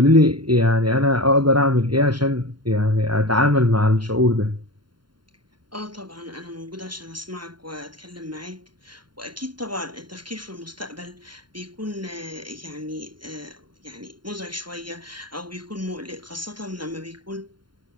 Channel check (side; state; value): left; late; 0.72 ms